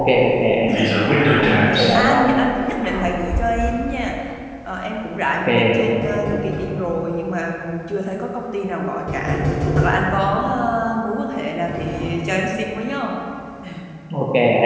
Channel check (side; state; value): both; identical; correlation 1.00